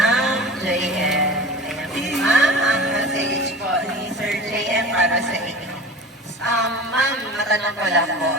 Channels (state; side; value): normal; both; correlation 0.36